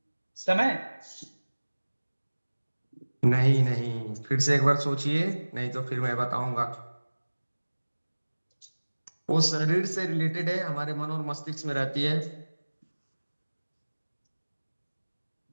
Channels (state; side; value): inverted; both; correlation -1.00